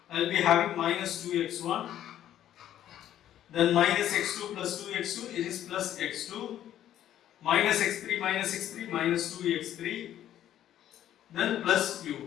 I will be having minus 2x1. Then minus x2 plus 2x2. It is plus x2. Minus x3 minus 2x3. Then plus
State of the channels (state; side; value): quieter; right; 11.6 dB